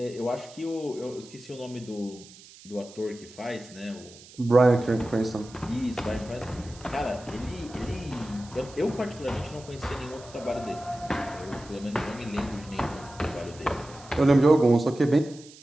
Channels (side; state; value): right; noise; hiss, 21 dB below the sound